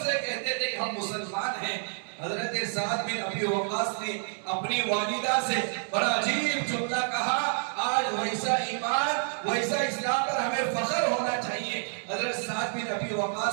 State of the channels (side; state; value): left; silent; 59 dB below the other